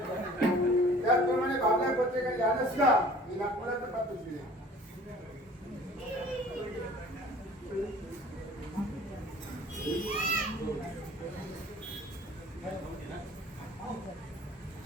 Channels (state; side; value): normal; both; correlation 0.49